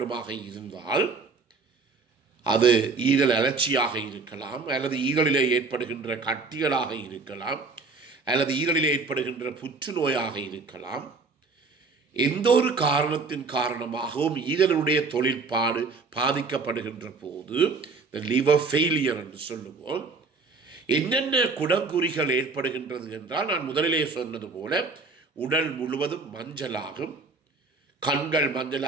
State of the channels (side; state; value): left; quieter; 4.1 dB